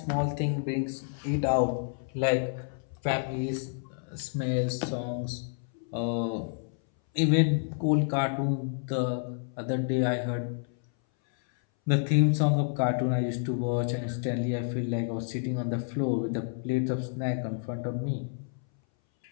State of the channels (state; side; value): silent; right; 58 dB below the other